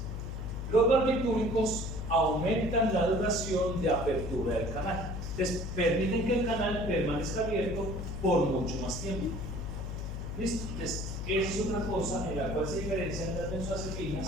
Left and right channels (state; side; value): noise; left; hum, 5 dB below the sound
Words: Los barbitúricos aumentan la duración de apertura del canal. Entonces, permiten que el canal permanezca abierto por mucho más tiempo. ¿Listo? Entonces, esa es otra cosa en la cual se diferencian las benzodiazepinas